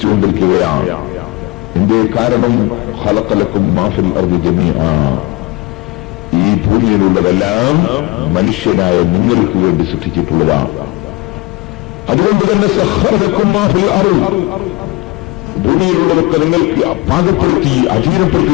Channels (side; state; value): right; quieter; 22.4 dB